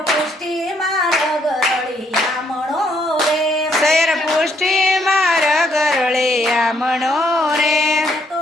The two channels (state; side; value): normal; both; correlation 0.70